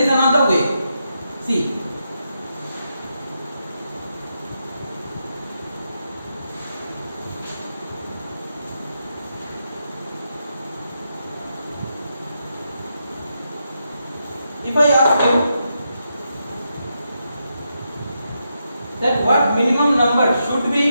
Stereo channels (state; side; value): inverted; both; correlation -0.83